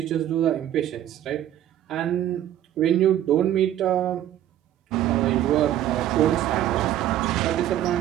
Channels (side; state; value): left; quieter; 12.1 dB